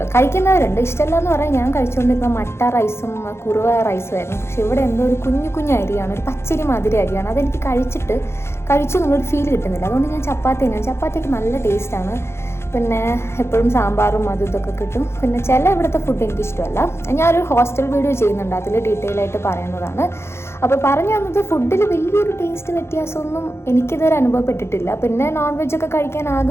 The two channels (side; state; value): right; late; 0.12 ms